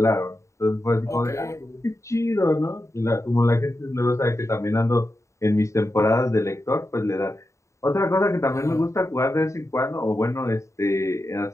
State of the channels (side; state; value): right; late; 0.14 ms